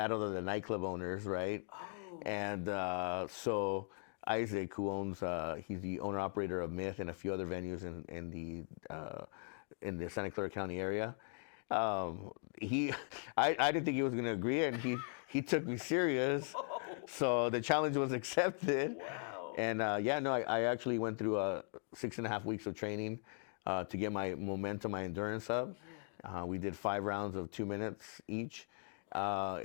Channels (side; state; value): right; silent; 52 dB below the other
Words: of the nightclub owners, right? Oh. And so Isaac, who owns, he's the owner operator of Myth and a few other venues in the Santa Clara County area. I didn't think he was going to agree, and he took me serious. Whoa. So the challenge was accepted. Wow. And I actually went through 6.5 weeks of training to get my momentum, my endurance up. Yeah. We did 5 rounds of 2 minutes each.